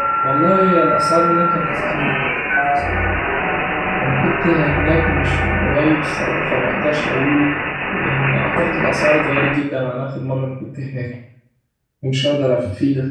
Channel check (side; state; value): both; identical; correlation 1.00